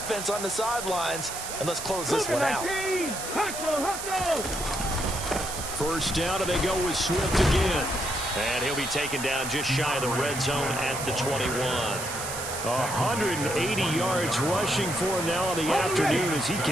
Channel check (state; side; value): noise; right; hiss, 7 dB below the sound